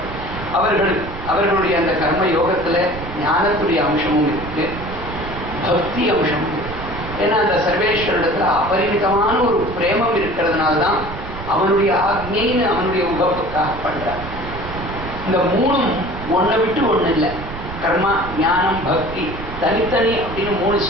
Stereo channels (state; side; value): noise; right; rumble, 10 dB below the sound